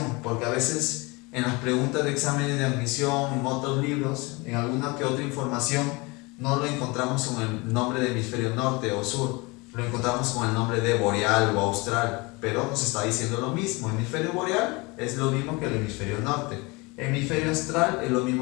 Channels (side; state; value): right; quieter; 25.9 dB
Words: porque a veces en las preguntas de exámenes de admisión, en otros libros, en alguna que otra información, no lo encontramos con el nombre de hemisferio norte o sur, lo encontramos con el nombre de boreal o austral, pero nos está diciendo lo mismo. Hemisferio boreal es lo mismo que el hemisferio norte, hemisferio austral es lo